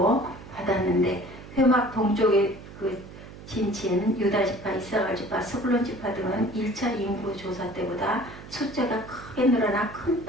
받았는데 회막 동쪽의 그 진친 유다지파, 이사갈지파, 스불론지파 등은 1차 인구 조사 때보다 숫자가 크게 늘어나 큰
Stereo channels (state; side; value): noise; right; hum, 16 dB below the sound